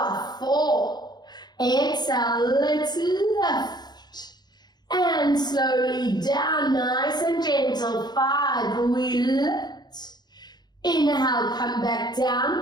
4. Exhale, let's lift. And slowly down, nice and gentle, 5. We lift. Inhale, come back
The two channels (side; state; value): right; late; 0.20 ms